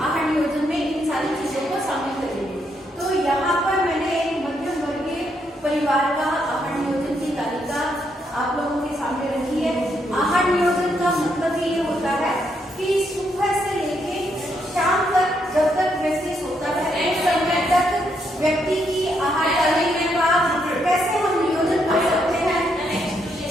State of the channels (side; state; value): both; normal; correlation 0.77